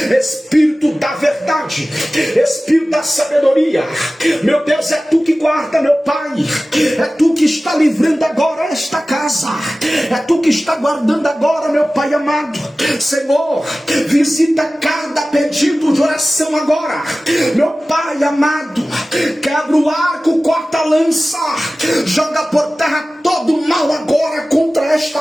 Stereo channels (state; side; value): normal; both; correlation 0.97